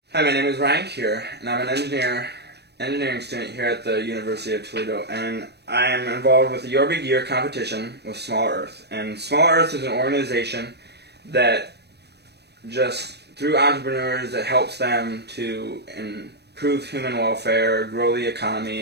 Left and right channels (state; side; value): late; left; 0.48 ms